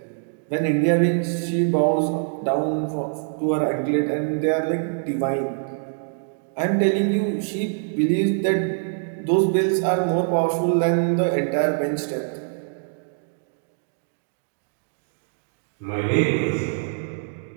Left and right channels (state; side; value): silent; left; digital silence